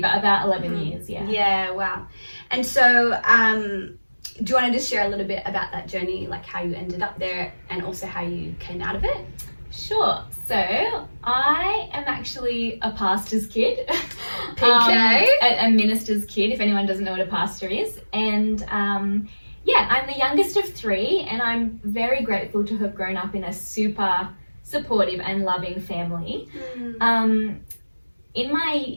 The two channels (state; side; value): inverted; both; correlation -1.00